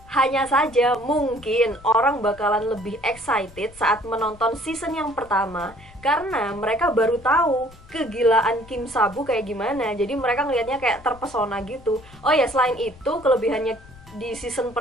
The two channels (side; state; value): left; noise; rumble, 22 dB below the sound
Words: Hanya saja mungkin orang bakalan lebih excited saat menonton season yang pertama karena mereka baru tahu kegilaan Kim Sa-bu kayak gimana. Jadi mereka ngelihatnya kayak terpesona gitu. Oh ya, selain itu kelebihannya di season